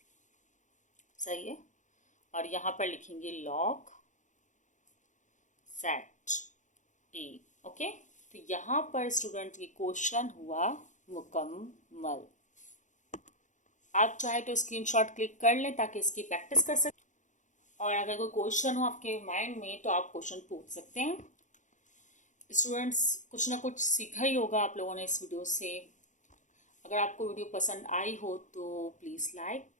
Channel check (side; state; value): right; late; 0.36 ms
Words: सही है, और यहाँ पर लिखेंगे log z a। ओके, तो यहाँ पर स्टूडेंट की क्वेश्चन हुआ मुकम्मल। आप चाहे तो स्क्रीनशॉट क्लिक कर लें ताकि इसकी प्रैक्टिस कर सकें, और अगर कोई क्वेश्चन हो आपके माइंड में तो आप क्वेश्चन पूछ सकते हैं। स्टूडेंट्स, कुछ ना कुछ सीखा ही होगा आप लोगों ने इस वीडियो से। अगर आपको वीडियो पसंद आई हो तो प्लीज़ लाइक,